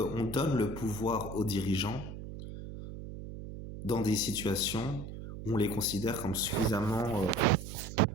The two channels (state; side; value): noise; right; hum, 10 dB below the sound